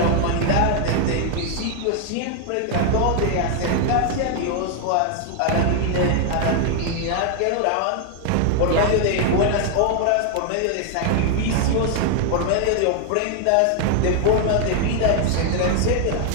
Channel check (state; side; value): different; both; correlation 0.00